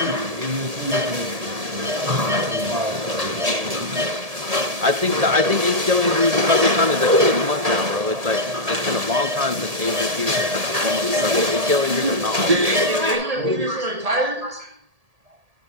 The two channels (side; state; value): left; late; 1.7 ms